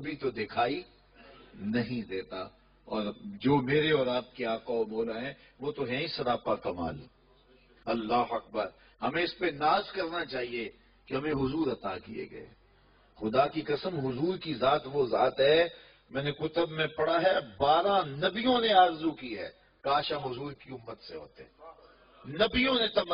تو دکھائی نہیں دیتا، اور جو میرے اور آپ کے آقا و مولا ہیں وہ تو ہیں ہی سراپا کمال۔ اللہ اکبر، ہمیں اس پہ ناز کرنا چاہیے کہ ہمیں حضور عطا کیے گئے۔ خدا کی قسم حضور کی ذات وہ ذات ہے، میں نے کتب میں پڑھا ہے 12 نبیوں نے آرزو کی ہے کاش ہم حضور کی امت سے ہوتے، نبیوں نے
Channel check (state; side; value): identical; both; correlation 1.00